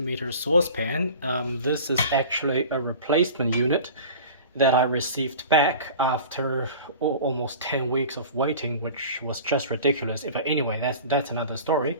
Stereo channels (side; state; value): both; inverted; correlation -0.39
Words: saucepan. This is actually a replacement unit that I received back after almost 10 weeks of waiting, which was just ridiculous. But anyway, that's another story.